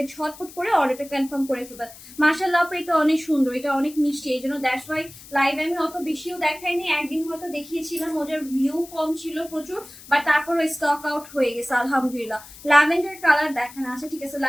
ঝটপট করে অর্ডারটা কনফার্ম করে ফেলবেন। মাশাআল্লাহ আপু এটা অনেক সুন্দর, এটা অনেক মিষ্টি, এই জন্য দ্যাটস ওয়াই লাইভ আমি অত বেশিও দেখাইনি, একদিন হয়তো দেখিয়েছিলাম, ওটার ভিউ কম ছিল প্রচুর, বাট তারপরে স্টক আউট হয়ে গেছে আলহামদুলিল্লাহ। ল্যাভেন্ডার কালার দেখানো আছে, ঠিক আছে,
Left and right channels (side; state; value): left; noise; hiss, 18 dB below the sound